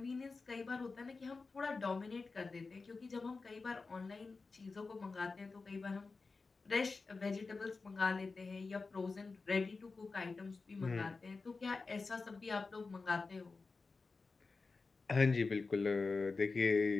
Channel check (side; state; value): right; quieter; 4.1 dB